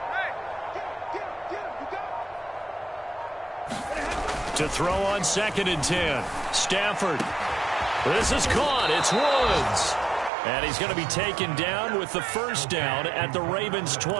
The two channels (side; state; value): left; drops out; at 10.3 s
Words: Hey, get him. You got To throw on 2nd and 10. Stafford. This is caught. It's Woods. And he's going to be taken down with the first down at the Ravens'